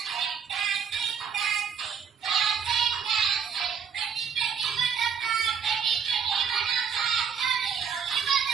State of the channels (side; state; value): left; quieter; 7.0 dB